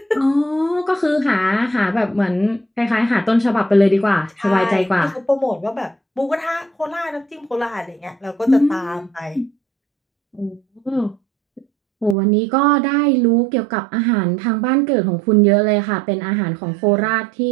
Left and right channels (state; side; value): drops out; left; at 12.2 s